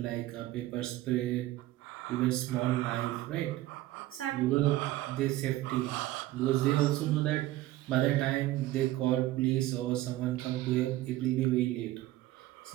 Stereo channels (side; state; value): left; quieter; 16.1 dB